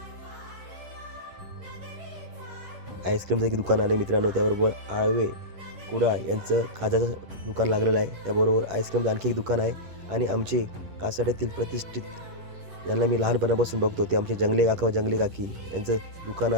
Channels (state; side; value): late; left; 11 ms